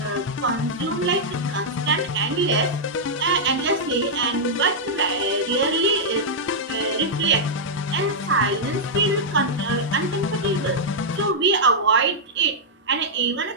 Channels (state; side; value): normal; both; correlation -0.07